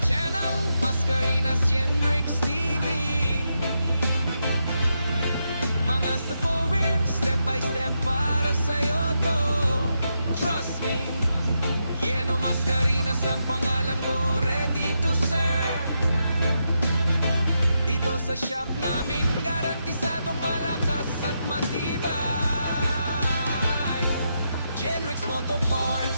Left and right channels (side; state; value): both; inverted; correlation -0.83